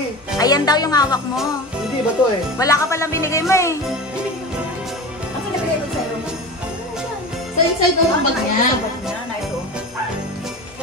eh. Ayan daw yung hawak mo. Hindi ba to eh? Wala ka palang binigay mo eh. Ano nabigay ko sa'yo? Sa inside daw ang bag niya.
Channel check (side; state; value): both; normal; correlation 0.30